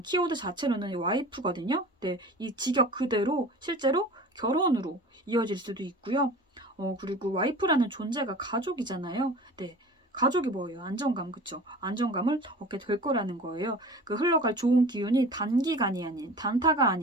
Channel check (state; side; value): normal; both; correlation 0.39